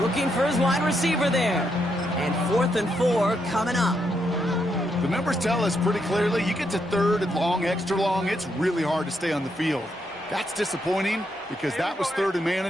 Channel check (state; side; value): normal; both; correlation 0.79